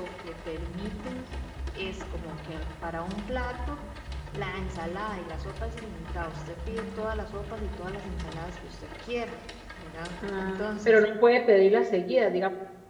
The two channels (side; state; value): both; identical; correlation 1.00